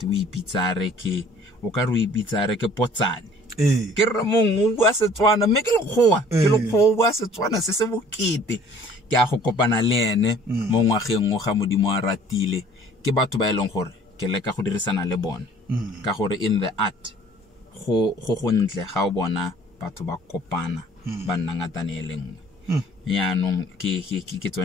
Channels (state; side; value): normal; both; correlation 0.53